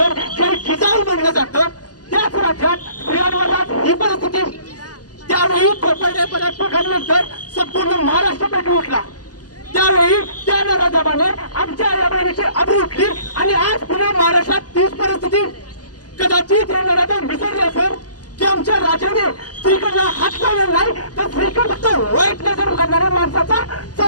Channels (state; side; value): late; right; 0.68 ms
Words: जय जिजाऊ म्हणलं जातं, त्याच राज्यात स्त्रियांवर आज ही परिस्थिती. त्यावेळी कोपर्डे पराटपकांनंतर संपूर्ण महाराष्ट्र पेटून उठला. त्यावेळी त्या नराधमाने आमच्या आई बहिणीची अबू उठली आणि आज पुन्हा महाराष्ट्रात तीच परिस्थिती. कदाचित हे नराधम विसरले असेल की आमच्या राजाने स्त्रीकडला हात लावला नाही, तर स्त्रीकडे फक्त वाईट नजर करणाऱ्या माणसाचा